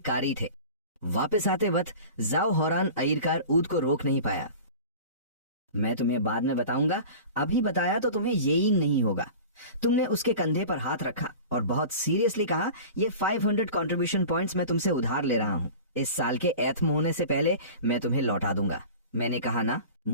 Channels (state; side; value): inverted; both; correlation -0.37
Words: थे। वापस आते वक्त जाओ हौरान आयरकार ऊद को रोक नहीं पाया। मैं तुम्हें बाद में बताऊंगा, अभी बताया तो तुम्हें यकीन नहीं होगा। तुमने उसके कंधे पर हाथ रखा और बहुत सीरियसली कहा, ये 500 कंट्रीब्यूशन पॉइंट्स मैं तुमसे उधार ले रहा हूँ। इस साल के एथम होने से पहले मैं तुम्हें लौटा दूंगा। मैंने कहा ना,